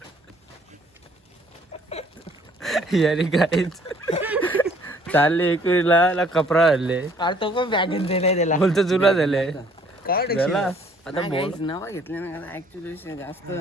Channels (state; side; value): normal; both; correlation 0.60